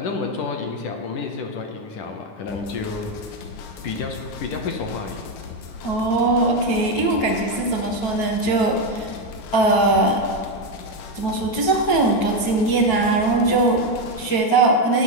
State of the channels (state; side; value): late; right; 9.2 ms